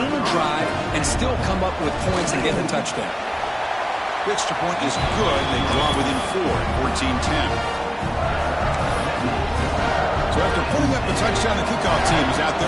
a drive and still come up with points and get a touchdown. The extra point is good. They draw within 4 at 14-10. So after putting up a touchdown, the kickoff team is out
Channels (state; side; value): identical; both; correlation 1.00